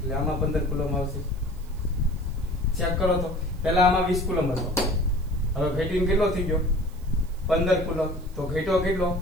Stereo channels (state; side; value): noise; right; hiss, 27 dB below the sound